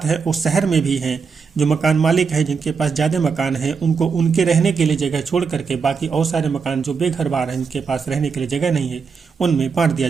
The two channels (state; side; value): quieter; left; 5.5 dB